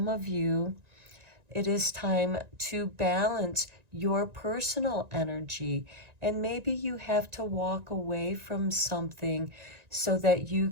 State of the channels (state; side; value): late; left; 1.9 ms